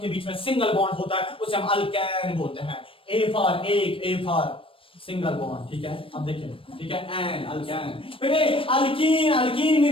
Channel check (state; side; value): late; right; 0.26 ms